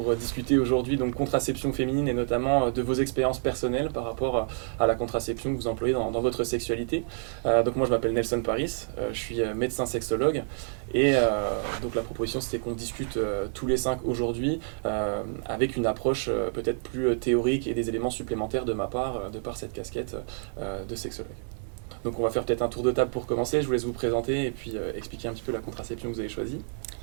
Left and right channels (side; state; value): left; silent; digital silence